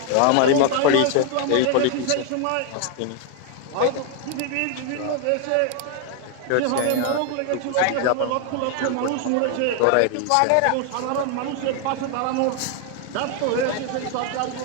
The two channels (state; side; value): different; both; correlation 0.00